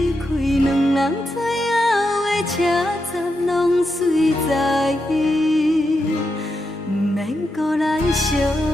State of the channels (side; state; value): both; normal; correlation 0.85